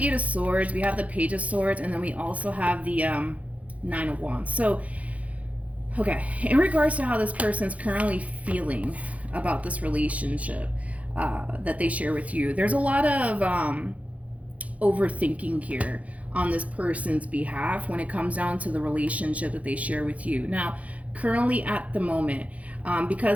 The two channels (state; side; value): late; left; 0.067 ms